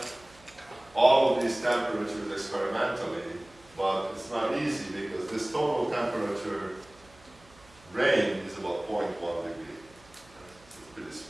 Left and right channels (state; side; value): noise; right; hum, 26 dB below the sound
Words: all of these temperatures experimentally, but it's not easy because this total temperature range is about 0.1 degree. It's pretty